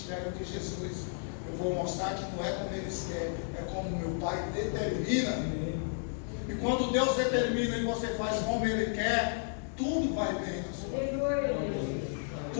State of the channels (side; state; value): right; silent; digital silence